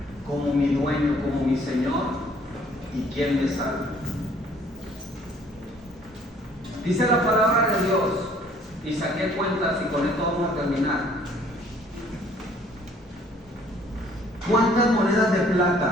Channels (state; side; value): normal; both; correlation 0.58